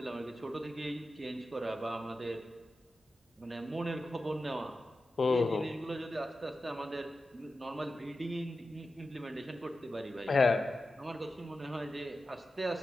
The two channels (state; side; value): normal; both; correlation 0.92